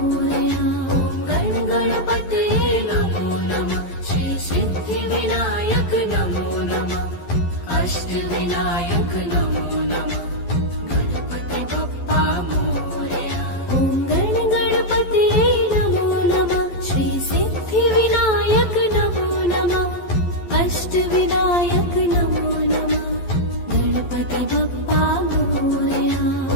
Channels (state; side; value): late; right; 11 ms